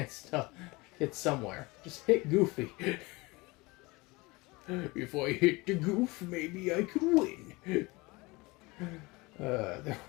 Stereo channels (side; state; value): right; quieter; 23.7 dB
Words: to hit somewhere. Just hit Goofy. If I hit the Goof, maybe I could win. There